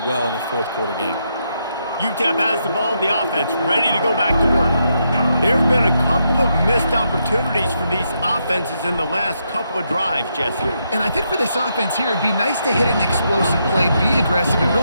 well in a fourth quarter game. UTEP has the ball, the offense ready to go back to work. There have been a couple of missed opportunities for these offenses in the last couple of drives, Jesse. And I think for this offense here, it'd be nice to hit an explosive play, be aggressive, and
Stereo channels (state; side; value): inverted; both; correlation -0.80